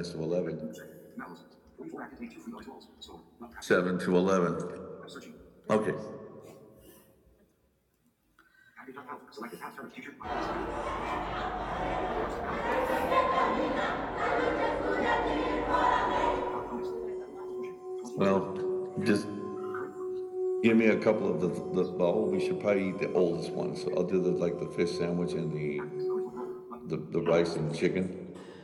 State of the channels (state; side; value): identical; both; correlation 1.00